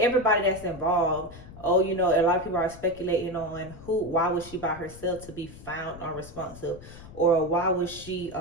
that's involved, a lot of people are speculating on why was she by herself to be found unresponsive, or why was she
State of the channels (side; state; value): left; noise; rumble, 17 dB below the sound